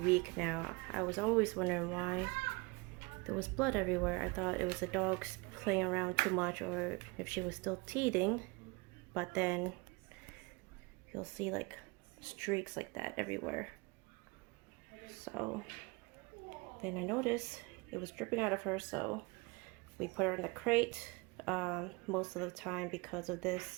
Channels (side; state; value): left; quieter; 26.7 dB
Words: now. I was always wondering why there was blood everywhere. I thought it was the dogs playing around too much or if she was still teething. But then you'll see like streaks like that everywhere. So then I noticed it was dripping out of her, so we put her in the crate most of the time because of